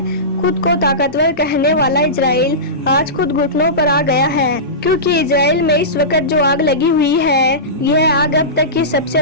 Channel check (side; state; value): both; normal; correlation -0.20